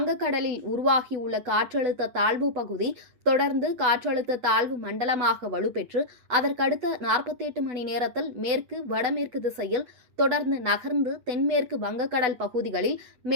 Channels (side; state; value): left; late; 8.1 ms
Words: உருவாகியுள்ள காற்றழுத்த தாழ்வு பகுதி தொடர்ந்து காற்றழுத்த தாழ்வு மண்டலமாக வலுப்பெற்று அதற்கடுத்த 48 மணி நேரத்தில் மேற்கு வடமேற்கு திசையில் தொடர்ந்து நகர்ந்து தென்மேற்கு வங்கக்கடல் பகுதிகளில்